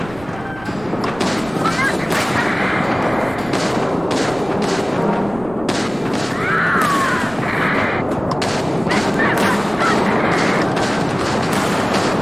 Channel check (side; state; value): right; noise; rumble, 18 dB below the sound